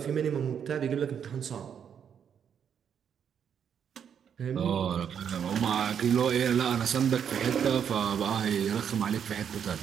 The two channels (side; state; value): left; quieter; 8.0 dB